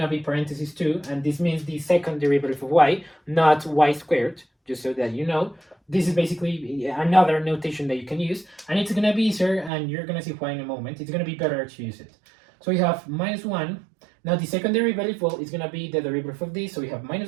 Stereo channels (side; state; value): left; drops out; at 9.7 s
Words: to be parentheses 2, and this means the second derivative of y, not y squared, just so that you know. This is basically another notation that you can use, and it's going to be easier, and you're going to see why in a moment. It's going to be better to use it. So we have minus 1. Now the second derivative, well, is going to be the derivative of this, so we have